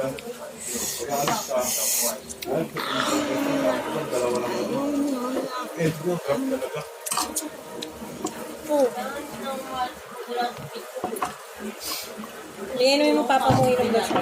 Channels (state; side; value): identical; both; correlation 1.00